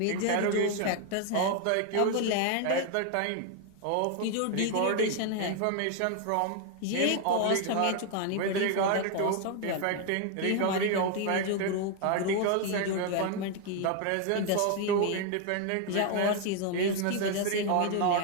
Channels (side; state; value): both; different; correlation 0.01